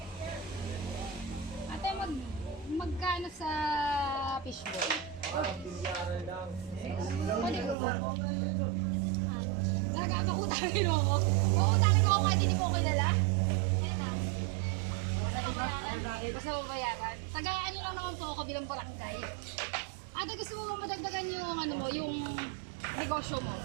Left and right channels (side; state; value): left; drops out; at 7.8 s